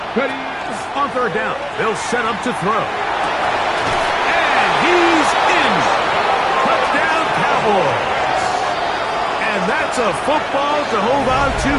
On 3rd down, they'll set up to throw. And he's in. Touchdown, Cowboys. And that's a football to hold on to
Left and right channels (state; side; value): identical; both; correlation 1.00